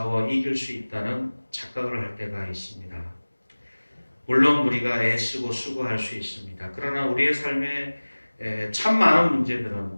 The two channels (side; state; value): both; inverted; correlation -1.00